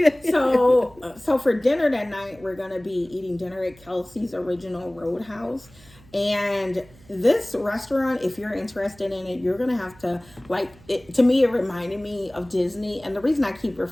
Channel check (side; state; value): right; noise; hum, 25 dB below the sound